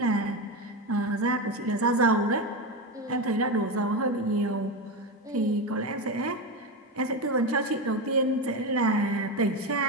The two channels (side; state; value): both; normal; correlation 0.16